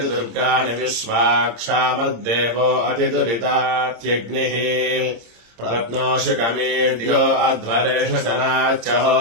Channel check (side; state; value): left; late; 26 ms